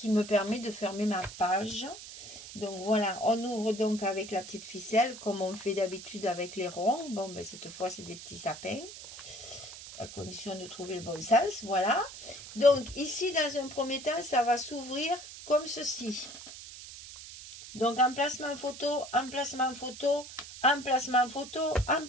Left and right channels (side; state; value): right; noise; hiss, 13 dB below the sound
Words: me permet de fermer ma page. Donc voilà, on ouvre donc avec la petite ficelle comme on fait d'habitude avec les ronds. Bon, ben cette fois, c'est des petits sapins, à condition de trouver le bon sens. Voilà. Donc ici, dans un premier temps, ça va s'ouvrir comme ceci. Donc emplacement photo, emplacement photo, emplacement photo,